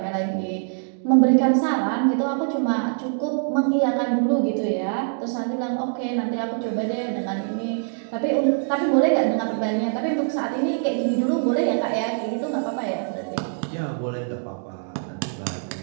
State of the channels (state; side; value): silent; left; digital silence